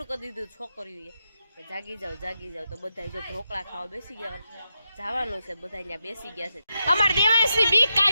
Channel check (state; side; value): inverted; both; correlation -0.86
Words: કરી દીધું છોકરીઓએ. જાગી જાઓ તો બધા જો ઢોકળા ખાવા બેસી ગયા, જવાનું છે, બધા અહીંયા બેસી ગયા છે. અમાર દેવાંશની બીક